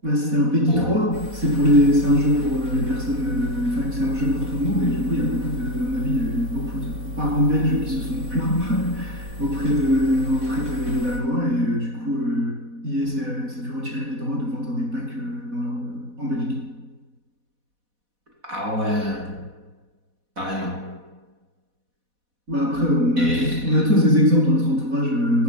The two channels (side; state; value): left; late; 4.1 ms